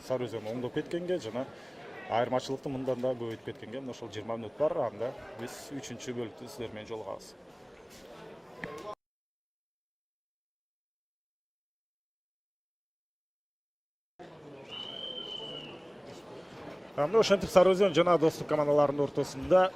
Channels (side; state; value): both; identical; correlation 1.00